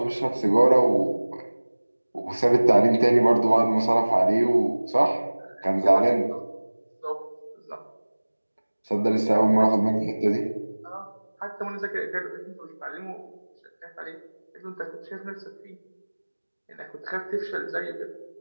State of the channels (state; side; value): inverted; both; correlation -1.00